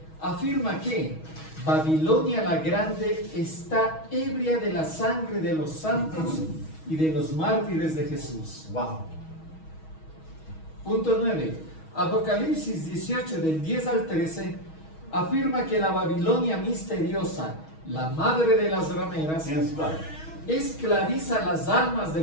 afirma que Babilonia la Grande está ebria de la sangre de los santos y de los mártires de Jesús. Wow. Punto 9. Apocalipsis 18, del 10 al 13, afirma que la Babilonia misteriosa, la madre de las rameras, Yes, God. esclaviza las almas de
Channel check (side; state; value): right; late; 6.3 ms